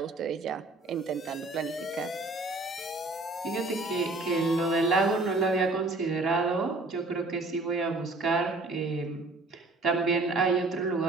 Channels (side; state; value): left; quieter; 3.1 dB